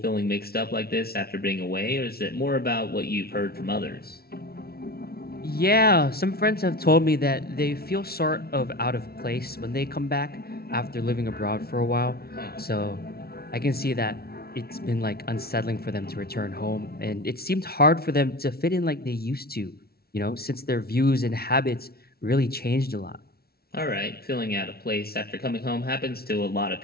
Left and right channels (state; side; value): late; right; 0.45 ms